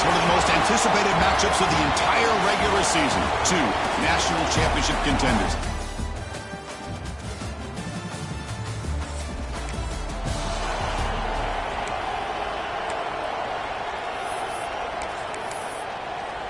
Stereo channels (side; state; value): both; identical; correlation 1.00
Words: one of the most anticipated matchups of the entire regular season. Two national championship contenders.